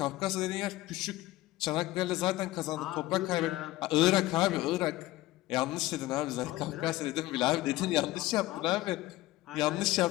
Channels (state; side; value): quieter; right; 17.4 dB